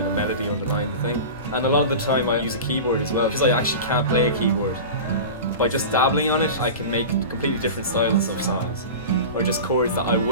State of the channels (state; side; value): inverted; both; correlation -0.30